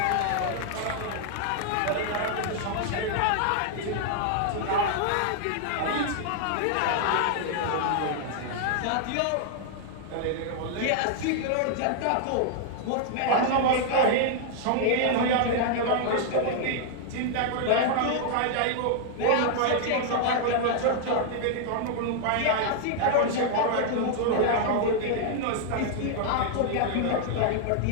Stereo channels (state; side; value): different; both; correlation -0.01